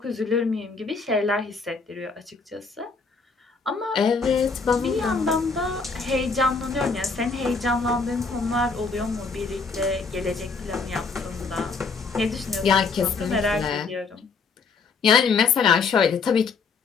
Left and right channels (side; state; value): right; quieter; 4.7 dB